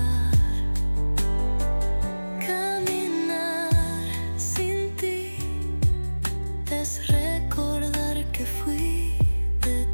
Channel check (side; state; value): both; inverted; correlation -1.00